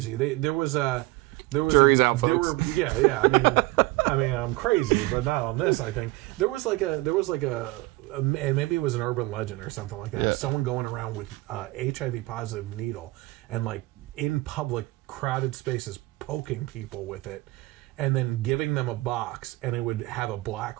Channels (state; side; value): quieter; left; 20.9 dB